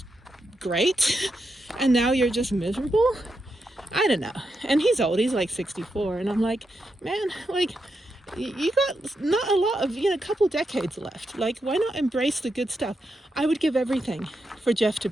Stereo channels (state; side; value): normal; both; correlation 0.85